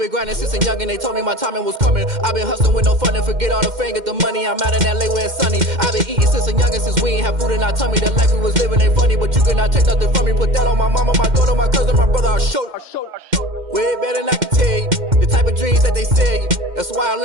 grinding since a youngin', they told me my timing was coming. I been hustling with no fun and forget all the fame, get the money. I'm out in LA where it's sunny. I been eating since a youngin', since we ain't have food in our tummy. The life we was living ain't funny, but you cannot take nothing from me. Put that on my mama, my daughter, my cousin, my brother, I'll show you. Way better than I can tell you. The type of dreams that they sell you. That's why I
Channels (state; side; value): late; left; 2.1 ms